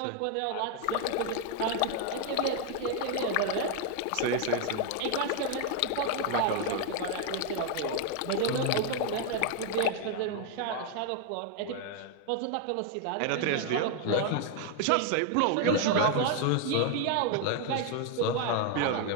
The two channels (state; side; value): different; both; correlation 0.01